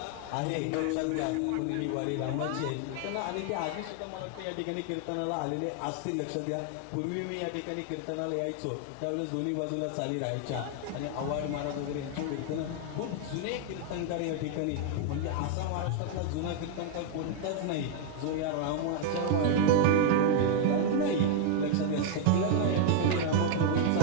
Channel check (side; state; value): both; different; correlation 0.00